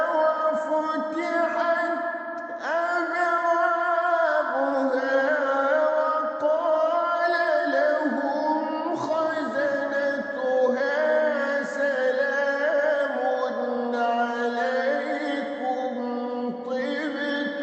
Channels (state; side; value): identical; both; correlation 1.00